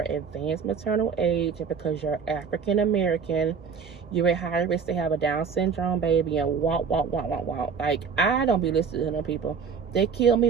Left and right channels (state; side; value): quieter; left; 6.0 dB